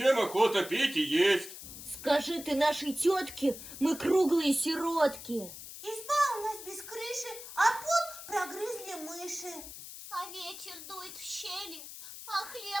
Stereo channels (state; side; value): noise; left; hiss, 12 dB below the sound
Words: охота пить и есть. Скажи ты нашей тетке, мы круглые сиротки. Изба у нас без крыши, а пол прогрызли мыши. А ветер дует в щели, а